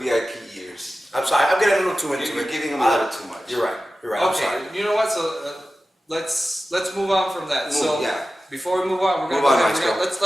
years. I'm sorry, I'm getting a little too into You're it. giving him a little too much. You're right. You're right. I'm Okay, sorry. you know what? So let's move on from that. So yeah. before we move on, we're Move gonna on, go ahead and Maestro.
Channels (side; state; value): both; normal; correlation 0.94